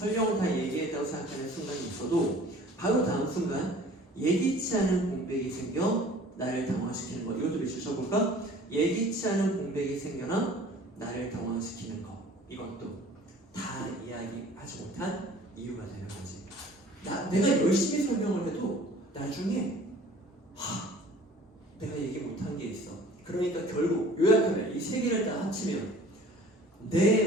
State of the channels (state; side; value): normal; both; correlation 0.49